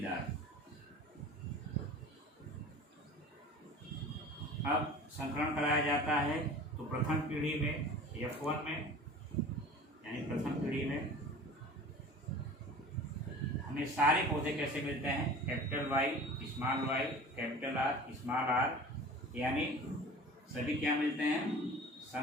अब संकरण कराया जाता है तो प्रथम पीढ़ी में F1 में, यानी प्रथम पीढ़ी में हमें सारे पौधे कैसे मिलते हैं? Capital Y small Y capital R small R, यानी सभी क्या मिलते हैं?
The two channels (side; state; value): both; normal; correlation 0.41